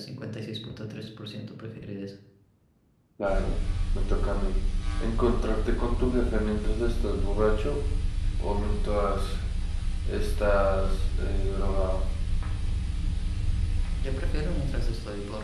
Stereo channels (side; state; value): both; identical; correlation 1.00